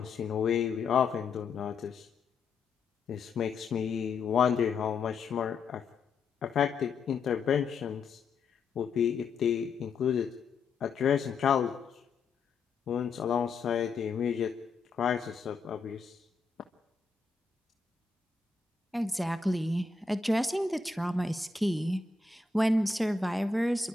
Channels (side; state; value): right; quieter; 4.7 dB